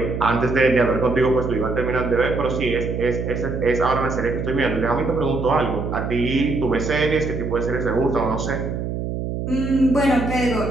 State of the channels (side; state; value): right; noise; hum, 4 dB below the sound